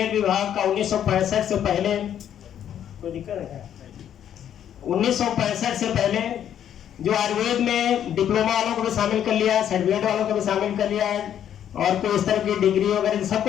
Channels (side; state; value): right; quieter; 9.9 dB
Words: विभाग का 1965 से पहले, कोई दिक्कत है क्या? 1965 से पहले जो आयुर्वेद में डिप्लोमा वालों को भी शामिल कर लिया, सर्टिफिकेट वालों को भी शामिल कर लिया है और कोई इस तरह की डिग्री वगैरह